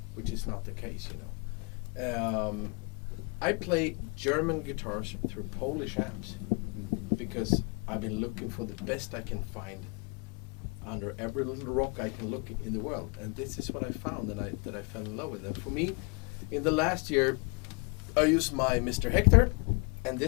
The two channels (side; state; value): right; quieter; 29.5 dB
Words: which is not the case, you know. I play German guitars through Polish amps because I've been looking for the best I can find under every little rock I can look in the world, and this is what I found, and that I fell in love with. And for me, in the last year, I used my Mr. Hector and